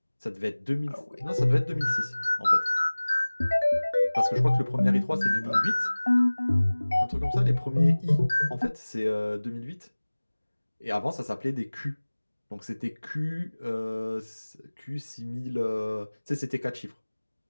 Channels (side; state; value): both; inverted; correlation -1.00